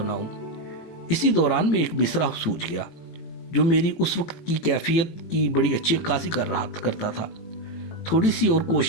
इसी दौरान में एक मिसरा सूझ गया जो मेरी उस वक्त की कैफियत की बड़ी अच्छी अक्कासी करता था। थोड़ी सी और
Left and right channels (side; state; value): right; late; 18 ms